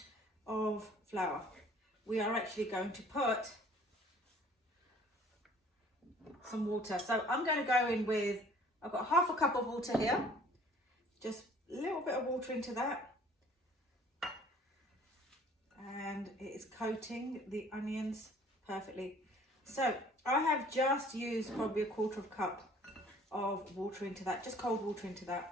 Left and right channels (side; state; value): both; normal; correlation 0.54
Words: of flour. We are actually going to put some water. So I'm going to go in with, I've got half a cup of water here. Just a little bit of water into that. And it is coating the onions perfectly. So I have just used probably a quarter of a cup of water into that, just cold water into